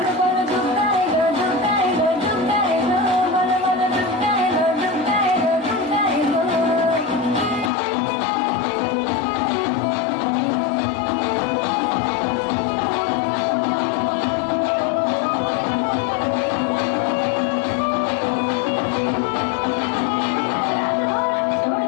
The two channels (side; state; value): right; drops out; at 7.7 s